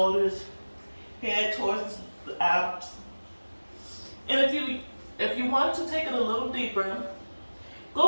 head towards the abs. And if you want to take it a little deeper,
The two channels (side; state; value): both; inverted; correlation -1.00